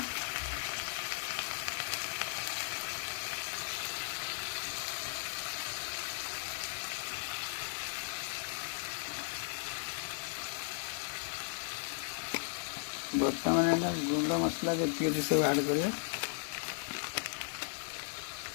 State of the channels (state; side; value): silent; right; digital silence